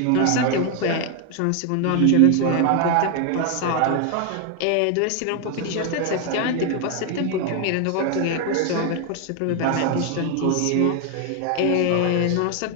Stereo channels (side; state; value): both; different; correlation 0.01